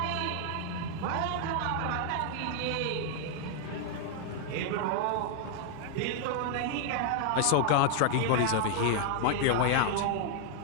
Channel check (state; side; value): different; both; correlation 0.00